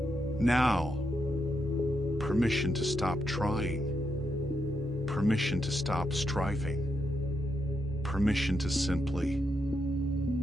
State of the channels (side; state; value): both; normal; correlation 0.82